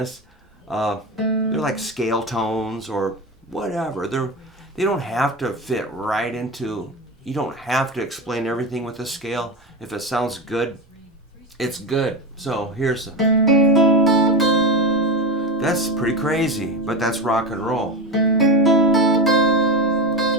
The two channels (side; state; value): both; normal; correlation 0.20